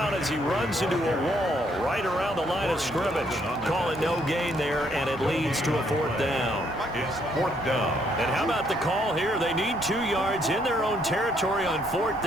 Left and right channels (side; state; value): both; normal; correlation 0.70